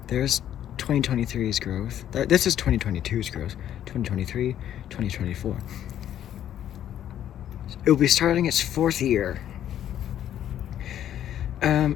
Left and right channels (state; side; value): quieter; right; 10.9 dB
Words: There's 2023's growth. This is 2022's growth. 2023, 2024. It will be starting its 4th year.